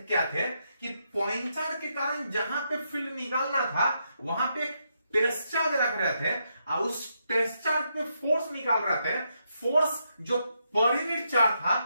क्या थे कि पॉइंट चार्ज के कारण जहां पे फील्ड निकालना था वहां पे टेस्ट चार्ज रख रहे थे और उस टेस्ट चार्ज पे फोर्स निकाल रहे थे। फोर्स जो पर यूनिट चार्ज था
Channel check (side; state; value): both; inverted; correlation -0.80